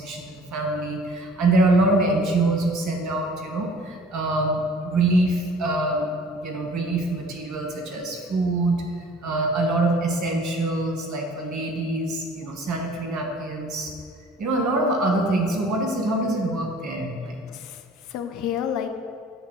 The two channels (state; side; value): normal; both; correlation 0.50